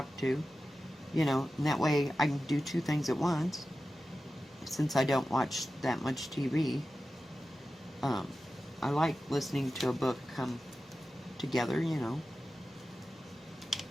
to, you know, and that way I can do 2 things at once. Since I don't watch that much TV, I like listening to a book come together, you know.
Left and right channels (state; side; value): normal; both; correlation 0.94